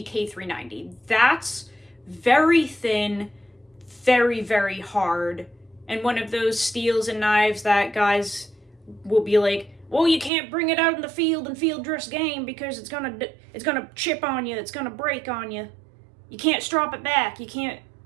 K390. That's very thin, very, very hard, and one of those steels and knives that guys will be like, well, you can't bring it out in the field and field dress game because it's gonna chip on you, it's gonna break on you. You can't strop it back. You can't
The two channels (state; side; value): drops out; left; at 10.3 s